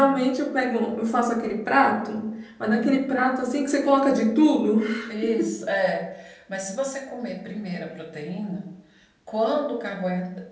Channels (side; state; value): both; identical; correlation 1.00